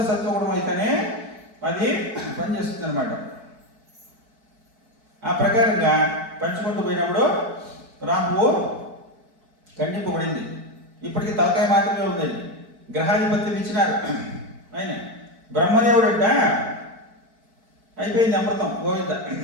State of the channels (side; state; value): left; late; 4.6 ms